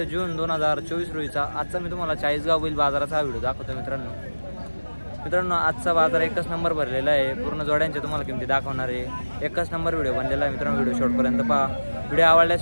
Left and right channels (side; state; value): both; inverted; correlation -1.00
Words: जून 2024 रोजीचा आजचा मी तुम्हाला चाळीसगाव बैल बाजाराचा व्हिडिओ दाखवतो। मित्रांनो आजचा बाजार एकच नंबर भरलेला आहे। पूर्ण जोड्यांचे तुम्हाला किमती दाखवणार आहे। एकच नंबर व्हिडिओ बनलेला आहे मित्रांनो। व्हिडिओ शेवटपर्यंत पहा। व्हिडिओ आवडल्यास